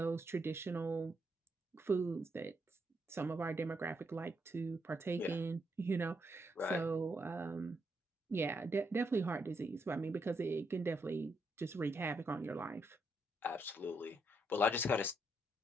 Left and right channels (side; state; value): both; normal; correlation 0.78